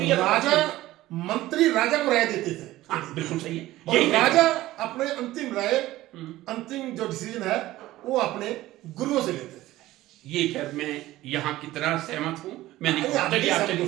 या राजा, मंत्री राजा को राय देते थे। हाँ, बिल्कुल सही है। और राजा अपने अंतिम राय, अंतिम जो डिसीजन है वो अपने गुरुओं से लेते थे। ये खैर मैं यहाँ कितना सहमत हूं मैं नहीं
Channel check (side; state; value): left; quieter; 16.3 dB